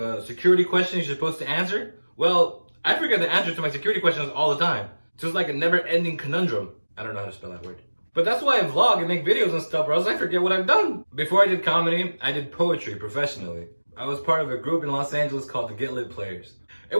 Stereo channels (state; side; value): inverted; both; correlation -1.00